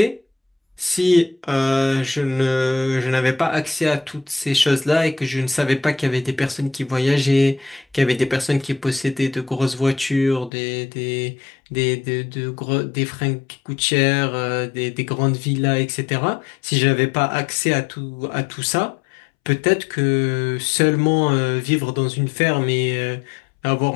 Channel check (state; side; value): drops out; right; at 10.5 s